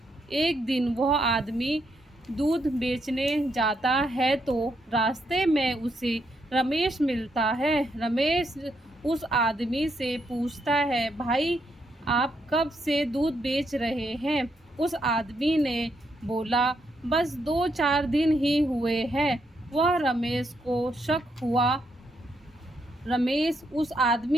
एक दिन वह आदमी दूध बेचने जाता है तो रास्ते में उसे रमेश मिलता है। रमेश उस आदमी से पूछता है, भाई आप कब से दूध बेच रहे हैं? उस आदमी ने बोला, बस 2-4 दिन ही हुए हैं। वह रमेश को शक हुआ। रमेश उस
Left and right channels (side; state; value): both; normal; correlation 0.78